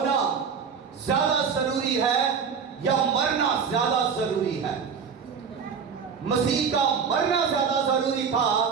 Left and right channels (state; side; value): quieter; left; 6.3 dB